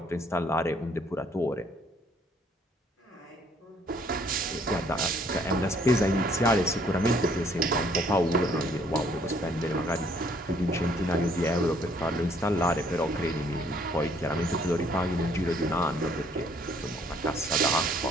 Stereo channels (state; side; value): normal; both; correlation 0.64